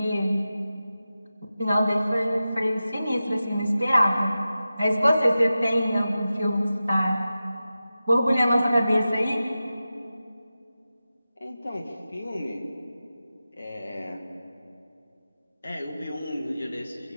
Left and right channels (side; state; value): both; inverted; correlation -0.94